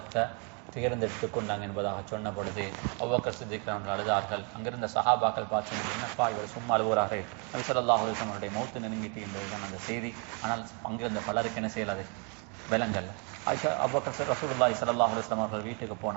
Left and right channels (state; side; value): quieter; left; 36.2 dB